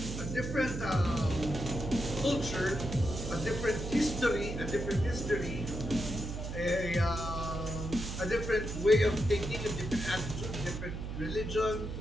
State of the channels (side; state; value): right; noise; hum, 6 dB below the sound